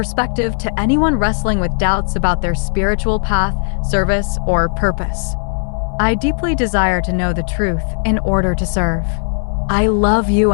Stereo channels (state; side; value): silent; right; digital silence